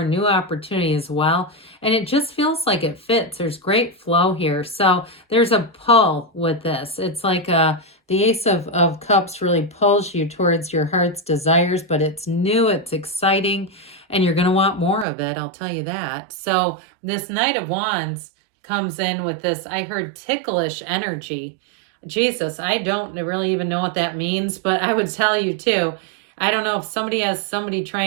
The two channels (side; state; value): left; drops out; at 15.1 s